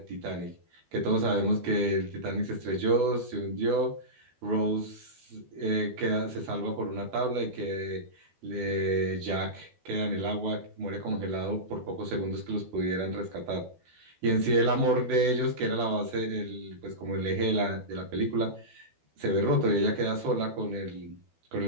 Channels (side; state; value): left; late; 12 ms